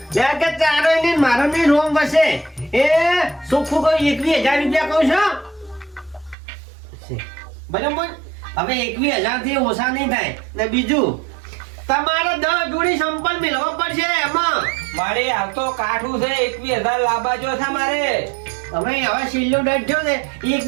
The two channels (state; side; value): drops out; left; at 6.4 s